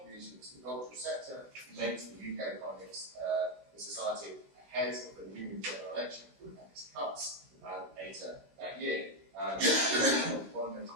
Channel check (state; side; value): late; left; 16 ms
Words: to the cultural sector made to the UK economics in society ahead of the new general election and its cuts later that year. One major